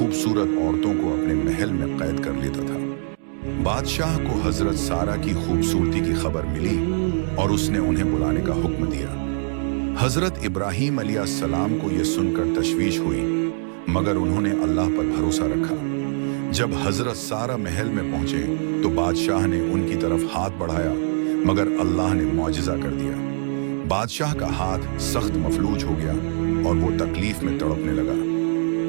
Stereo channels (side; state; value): left; silent; digital silence